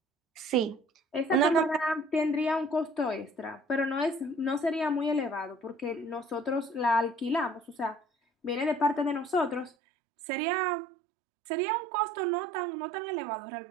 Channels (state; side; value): drops out; left; at 9.7 s